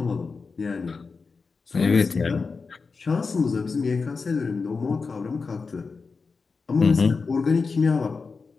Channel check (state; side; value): quieter; right; 4.6 dB